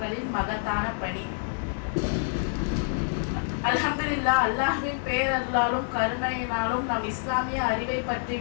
மகத்தான பணி. அல்ஹம்துலில்லாஹ், அல்லாஹ்வின் பேரருளாலும் கருணையினாலும் நம் இஸ்லாமிய அறிவை பற்றி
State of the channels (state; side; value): silent; right; 60 dB below the other